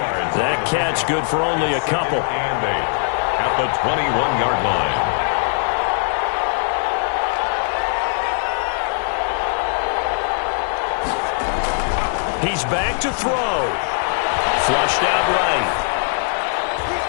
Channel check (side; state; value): right; silent; digital silence